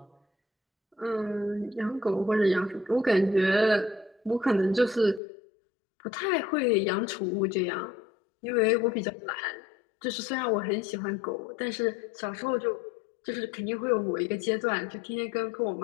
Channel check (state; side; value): drops out; right; at 5.2 s